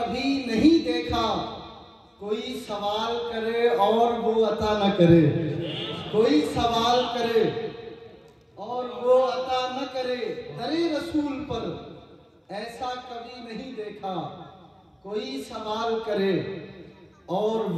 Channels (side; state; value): both; identical; correlation 1.00